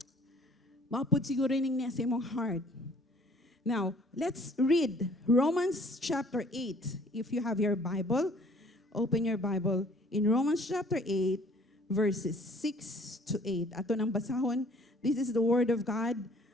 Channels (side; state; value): both; normal; correlation 0.56